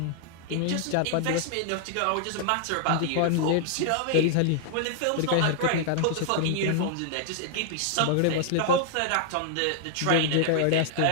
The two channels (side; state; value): both; different; correlation -0.01